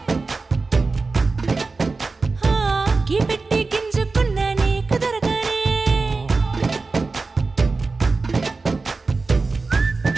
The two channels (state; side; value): quieter; left; 3.9 dB